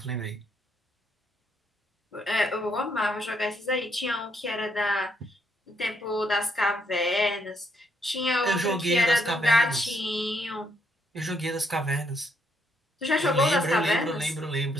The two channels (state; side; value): normal; both; correlation 0.73